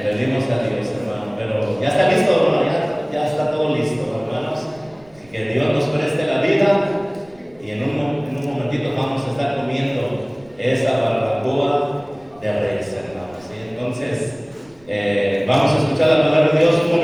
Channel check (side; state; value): right; noise; rumble, 29 dB below the sound